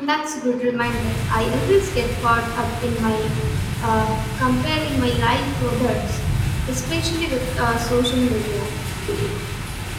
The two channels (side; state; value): both; identical; correlation 1.00